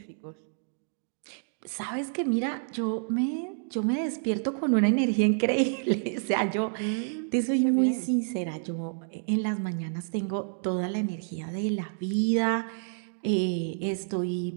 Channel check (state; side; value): silent; left; digital silence